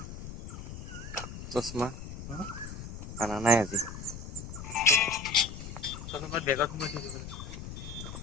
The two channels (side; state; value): left; noise; rumble, 9 dB below the sound